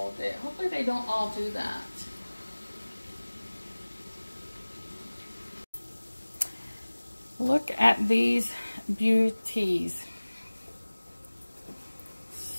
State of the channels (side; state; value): both; inverted; correlation -1.00